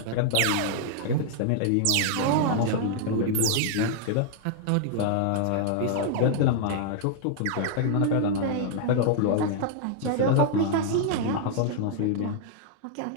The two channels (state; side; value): different; both; correlation -0.01